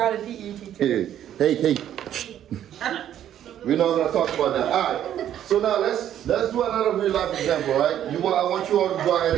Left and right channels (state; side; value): quieter; left; 10.8 dB